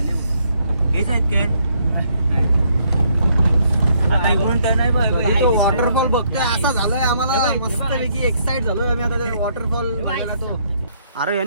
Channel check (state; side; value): inverted; both; correlation -0.70